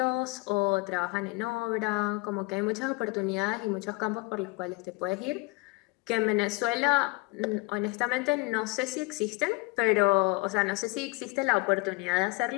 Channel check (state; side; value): quieter; right; 25.6 dB